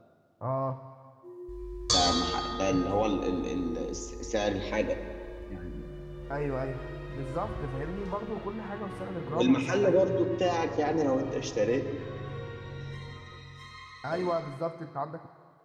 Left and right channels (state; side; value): identical; both; correlation 1.00